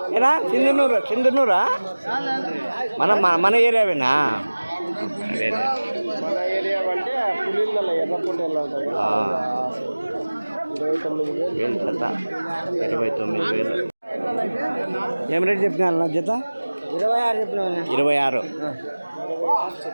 ఏనా సింధనూరా? మన ఏరియావేనా? మన ఏరియా అంటే పులిళ్ళ ఎర్రపొట్టేళ్ళు 29,000 జత. 29,000. ఏం రేట్ చెప్పినా జత? 26 చెప్పినా.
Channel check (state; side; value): inverted; both; correlation -1.00